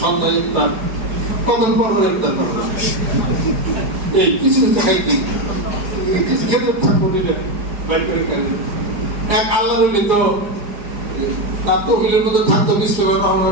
সন্ধ্যায় ইফতার কখন পর ইফতার করবে এই কিছু কিছু খাইতে কিছু খেতে থাকবো দিলে বাইর করে খাই এক আল্লাহর তো তার তহবিলের মধ্যে থাকতো বিশ্বনাথ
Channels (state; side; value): late; left; 4.9 ms